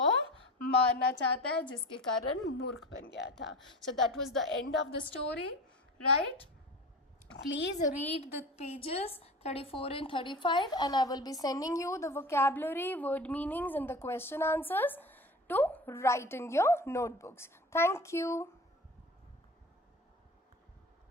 मारना चाहता है, जिसके कारण मूर्ख बन गया था. So that was the end of the story, right? Please read the pages 34 and 35 and I will be sending you the vocabulary, word meanings and the question answers to write in your notebooks. Thank you.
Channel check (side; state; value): both; normal; correlation 0.34